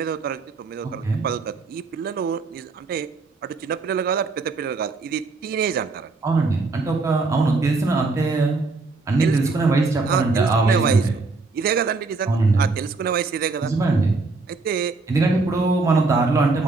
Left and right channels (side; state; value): left; quieter; 3.8 dB